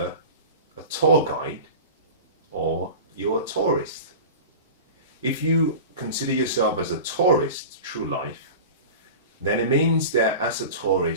a tour guide or you're a tourist. If you consider yourself as a tourist through life, then it means that as a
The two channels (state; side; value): inverted; both; correlation -0.33